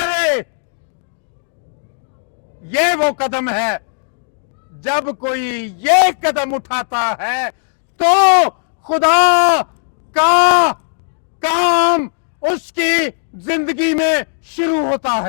ये वो कदम है। जब कोई ये कदम उठाता है तो खुदा का काम उसकी जिंदगी में शुरू होता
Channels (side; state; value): right; silent; digital silence